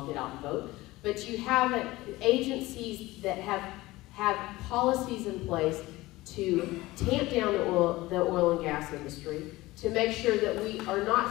get out and vote. But you have agencies that have policies in place to tamp down the oil and gas industry, to make sure that we are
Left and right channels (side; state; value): right; quieter; 19.1 dB